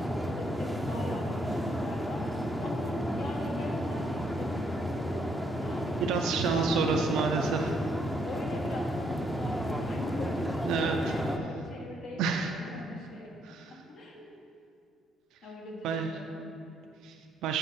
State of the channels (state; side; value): normal; both; correlation 0.72